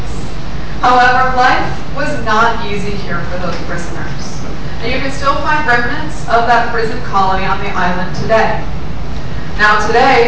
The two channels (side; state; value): both; identical; correlation 1.00